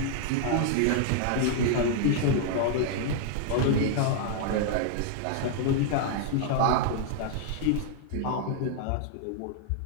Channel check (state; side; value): different; both; correlation -0.01